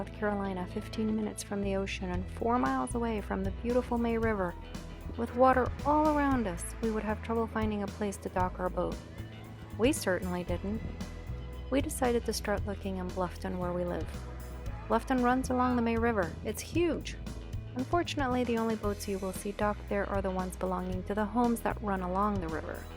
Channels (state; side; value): identical; both; correlation 1.00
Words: Carolina, 15 minutes from the ocean and 4 miles away from the beautiful May River, with water all around us, we would have trouble finding a place to dock our boat? We certainly didn't. We decided to start looking in Bluffton, where we live. Bluffton runs along the May River. It's huge. Unfortunately, the only boats you will see docked there are the ones belonging to the homes that run along the river.